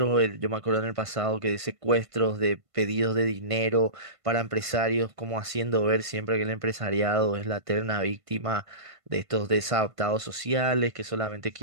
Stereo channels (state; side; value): late; left; 1.5 ms